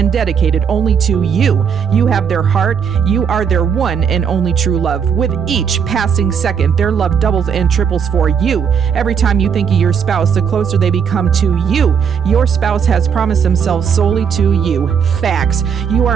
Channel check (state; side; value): quieter; left; 7.0 dB